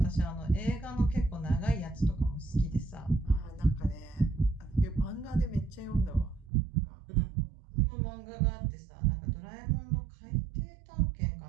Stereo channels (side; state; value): left; drops out; at 6.5 s